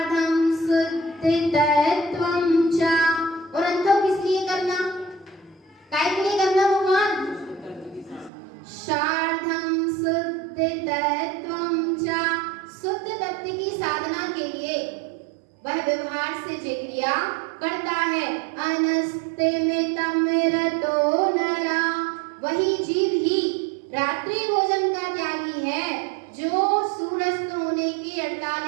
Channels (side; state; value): left; drops out; at 8.3 s